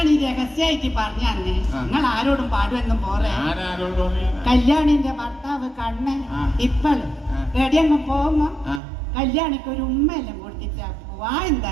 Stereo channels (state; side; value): drops out; left; at 8.8 s